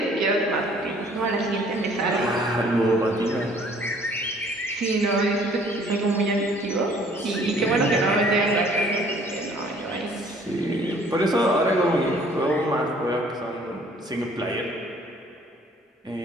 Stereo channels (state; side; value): normal; both; correlation 0.57